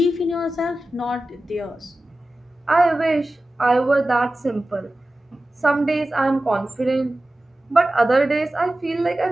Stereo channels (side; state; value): both; normal; correlation 0.95